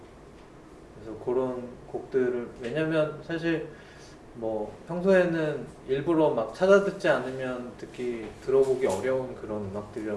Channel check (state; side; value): identical; both; correlation 1.00